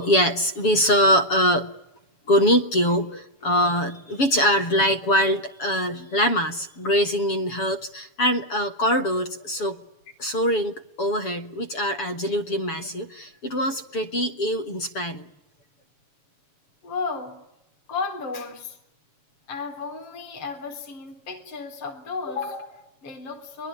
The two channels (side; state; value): right; late; 7.1 ms